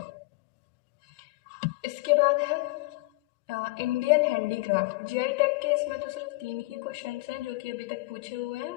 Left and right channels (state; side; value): quieter; right; 23.3 dB